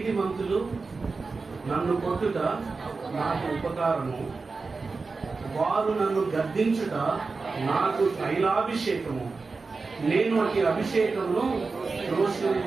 నన్ను కొట్టుట నాకు ఉపకారము, వారు నన్ను గద్దించుట నాకు తైలాభిషేకము, నేను అట్టి అభిషేకమును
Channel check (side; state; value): left; quieter; 4.2 dB